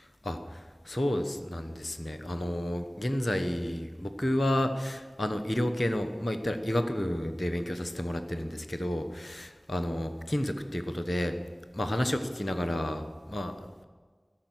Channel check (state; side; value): normal; both; correlation 0.96